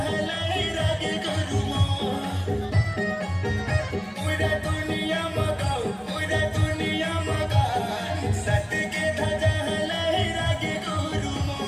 हलाई रागे गुरुमो पूरा दुनिया मका सत के ध्वजा हलाई रागे गुरुमो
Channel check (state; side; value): identical; both; correlation 1.00